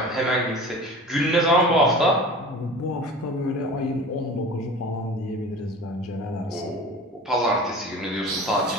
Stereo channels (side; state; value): both; normal; correlation 0.37